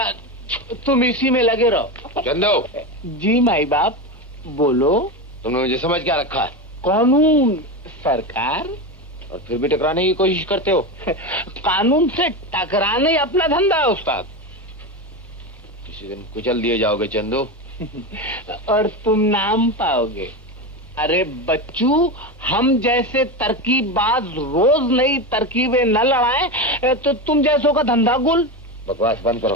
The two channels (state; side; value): normal; both; correlation 0.18